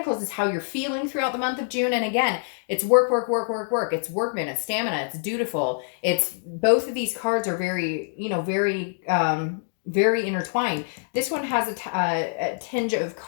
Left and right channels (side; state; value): right; silent; digital silence